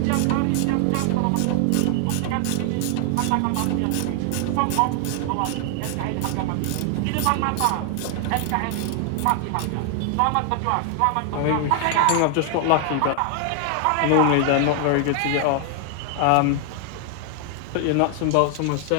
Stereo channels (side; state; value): both; different; correlation 0.00